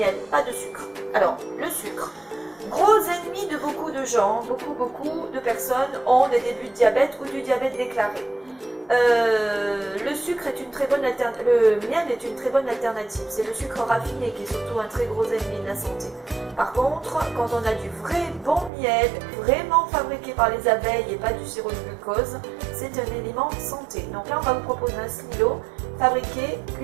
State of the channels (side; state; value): left; drops out; at 18.7 s